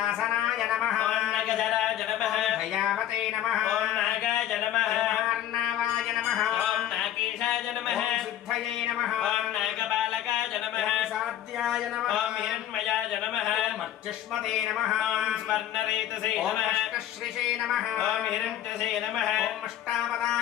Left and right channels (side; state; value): right; quieter; 11.7 dB